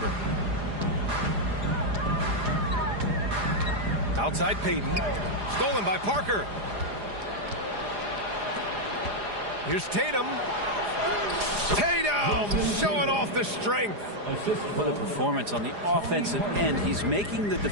Outside Payton. Stolen by Parker. Here's Tatum. Tatum showing off the strength. What a performance on the offensive end. He's making the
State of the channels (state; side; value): late; left; 4.9 ms